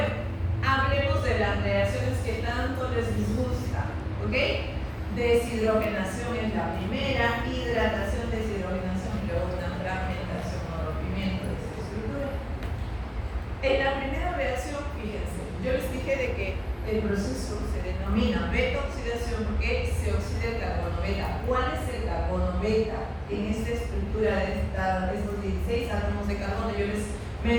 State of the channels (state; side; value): identical; both; correlation 1.00